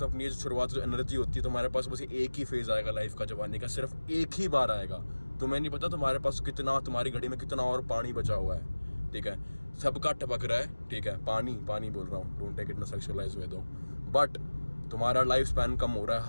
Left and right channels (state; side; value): inverted; both; correlation -1.00